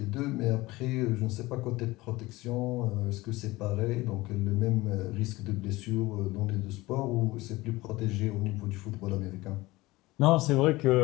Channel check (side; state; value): right; quieter; 20.0 dB